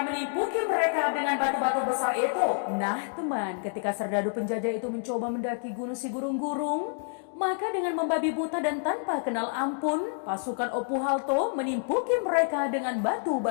menimpuki mereka dengan batu-batu besar itu. Nah teman, ketika serdadu penjajah itu mencoba mendaki gunung Sigurung-Gurung, maka dengan membabi buta dan tanpa kenal ampun, pasukan Opuhalto menimpuki mereka dengan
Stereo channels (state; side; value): silent; right; digital silence